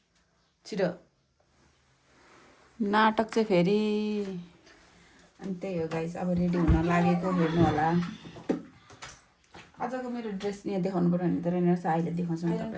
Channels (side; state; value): both; identical; correlation 1.00